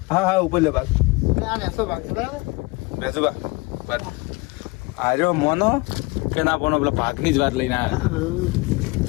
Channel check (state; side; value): quieter; right; 24.5 dB